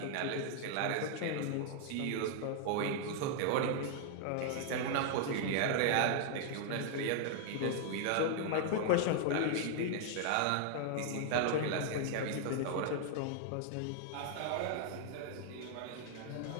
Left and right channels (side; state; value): both; different; correlation -0.01